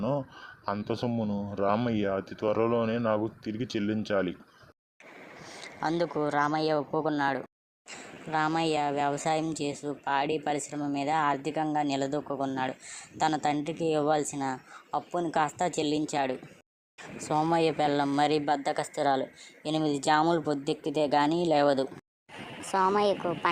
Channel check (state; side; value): identical; both; correlation 1.00